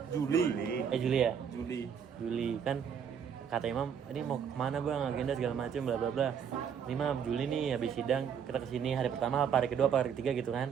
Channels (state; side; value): quieter; left; 7.6 dB